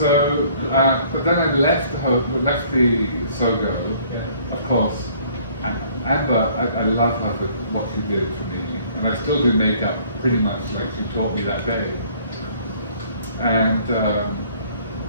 but then I left the Sogo, of course. Amber, I love her for what she did for me. And I still do makeup pretty much like she taught me that day. And,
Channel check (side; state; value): both; inverted; correlation -0.58